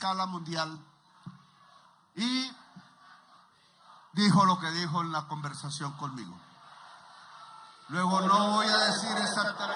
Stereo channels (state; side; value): identical; both; correlation 1.00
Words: mundial, y dijo lo que dijo en la conversación conmigo. Luego no voy a decir